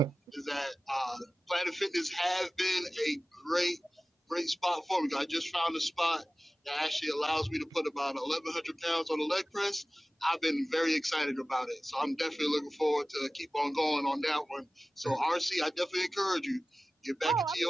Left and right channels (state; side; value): normal; both; correlation 0.97